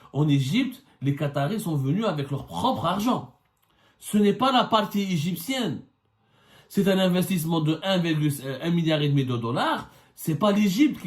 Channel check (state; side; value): identical; both; correlation 1.00